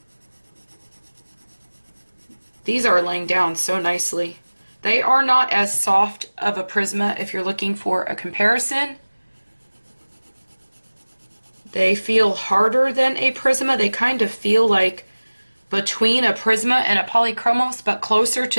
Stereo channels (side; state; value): both; inverted; correlation -1.00